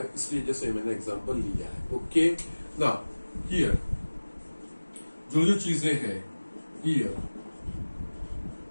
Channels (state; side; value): inverted; both; correlation -1.00